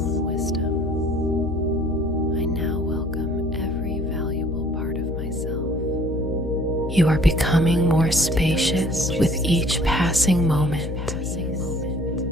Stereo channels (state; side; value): noise; left; hum, 5 dB below the sound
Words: wisdom. I now welcome every valuable part of myself. You are becoming more spacious with each passing moment.